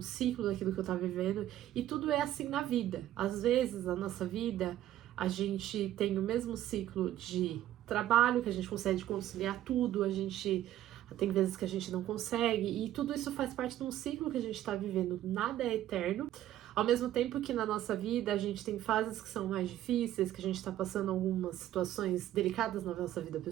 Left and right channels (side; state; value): left; quieter; 13.0 dB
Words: ciclo daquilo que eu tava vivendo, e tudo é assim na vida. Às vezes, na nossa vida, a gente tem o mesmo ciclo de trabalho, que a gente consegue conciliar tudo, a gente tem vezes que a gente não consegue, e tudo isso faz parte de um ciclo que a gente tá vivendo, nada é eterno. Ao mesmo tempo que na nossa vida a gente tem fases que são mais difíceis, que a gente tá passando algumas situações delicadas na nossa vida